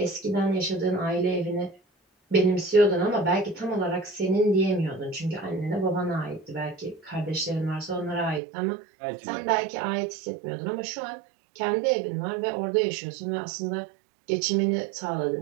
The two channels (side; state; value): left; drops out; at 8.4 s